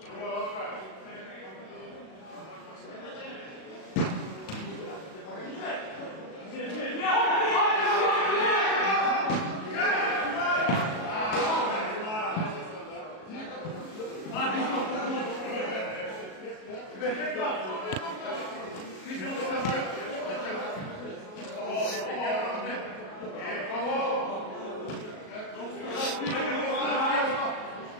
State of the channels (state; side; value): late; right; 37 ms